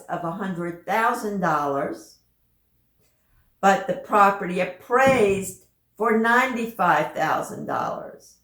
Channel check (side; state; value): both; identical; correlation 1.00